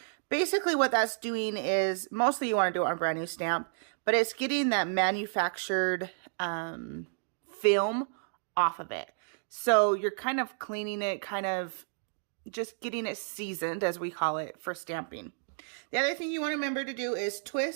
Basically, what that's doing is, mostly you want to do it on a brand new stamp, but it's getting that manufactured film off of it. So you're kind of cleaning it, kind of just getting it seasoned, as we call it, for stamping. The other thing you want to remember to do is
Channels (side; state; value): left; silent; digital silence